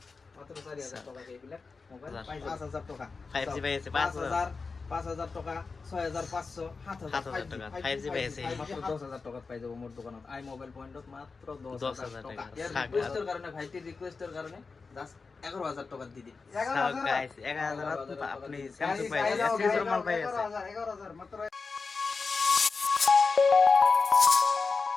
মাত্র 4,000 টাকা এইবিলাক মোবাইল 5,000 টাকা 5G পাই আছে 5,000 টাকা 6,500 7,000 টাকা 5G পাই আছে মাত্র 10,000 টাকা পাই যাব মোর দোকানত আই মোবাইল পয়েন্টত মাত্র 10,000 টাকা। ইয়ার রিকোয়েস্টের কারণে ভাইটির রিকোয়েস্টের কারণে জাস্ট 11,000 টাকা দি দিন। 11,000 গাইস 11,000 আপনি স্যামসাং পাই আছে মাল পাই আছে 11,000 মাত্র।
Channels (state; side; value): quieter; right; 4.5 dB